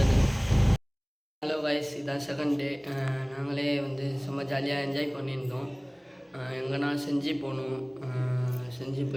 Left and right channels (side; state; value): both; identical; correlation 1.00